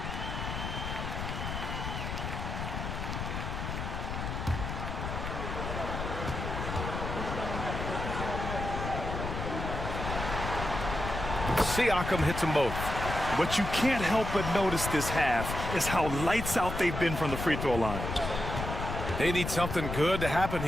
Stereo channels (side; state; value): left; noise; rumble, 4 dB below the sound